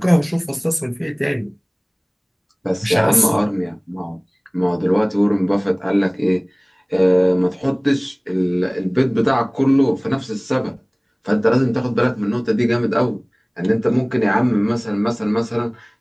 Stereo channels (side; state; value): both; identical; correlation 1.00